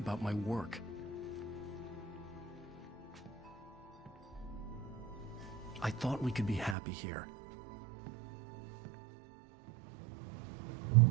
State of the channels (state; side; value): drops out; left; at 6.8 s